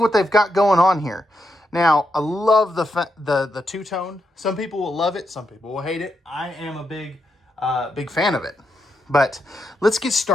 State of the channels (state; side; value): normal; both; correlation 0.82